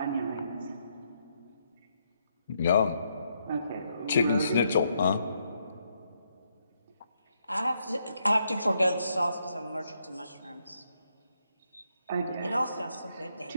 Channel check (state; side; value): inverted; both; correlation -0.77